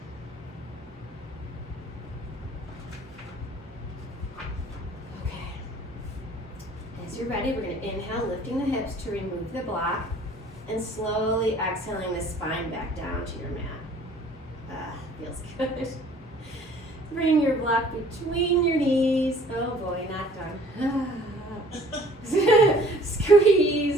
Okay, as you're ready, we're gonna inhale, lifting the hips to remove the block. And slowly exhaling the spine back down to your mat. Feels good. Bring your block between your knees. Oh boy, not done.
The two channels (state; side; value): normal; both; correlation 0.53